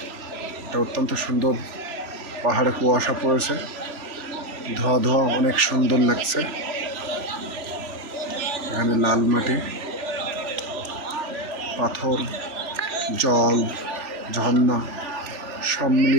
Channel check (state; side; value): late; left; 3.4 ms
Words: এটা অত্যন্ত সুন্দর। পাহাড়ে কুয়াশা পড়েছে, ধোয়া ধোয়া, অনেক সুন্দর লাগছে। এখানে লাল মাটি, পাথর, জল, ঝর্ণা সব